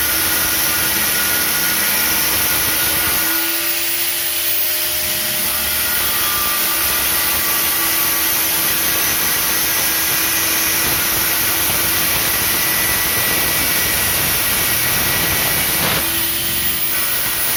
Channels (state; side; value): identical; both; correlation 1.00